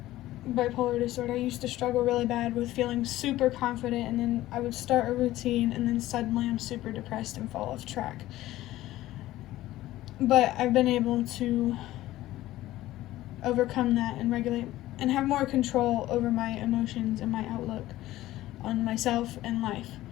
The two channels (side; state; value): right; quieter; 15.6 dB